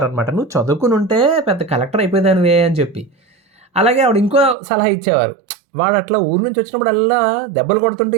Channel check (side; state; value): left; drops out; at 4.5 s